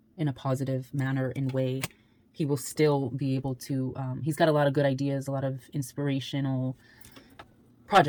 in a positive manner and way. He will still be able to he's got a lot of good ideas, a lot of inspirational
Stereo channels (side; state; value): both; identical; correlation 1.00